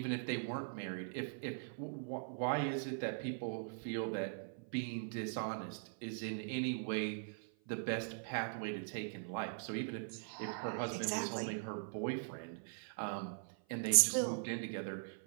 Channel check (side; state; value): left; silent; 50 dB below the other